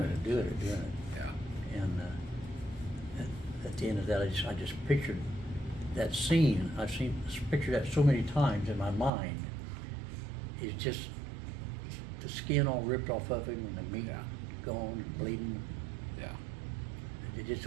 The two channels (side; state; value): left; drops out; at 9.1 s